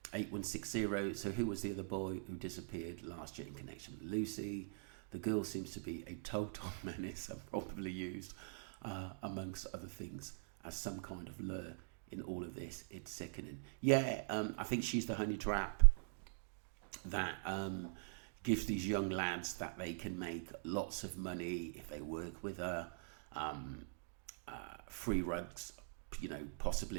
8160. So who was the other boy who disappeared last year in connection with Lucy? The girl seems to be a total menace and probably used, amongst other things, as some kind of lure in all of this. It's sickening. Yeah, I think she's the honey trap that gives these young lads that they can make lots of money if they work with her. Free rugs,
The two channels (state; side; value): silent; left; digital silence